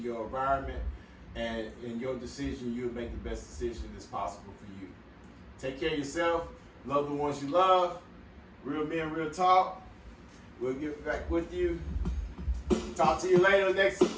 environment, and in your decision, you'll make the best decision that's possible for you. Take care of yourself, love the ones you love. Real men, real talk. We'll get back with you. Talk to you later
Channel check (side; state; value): both; identical; correlation 1.00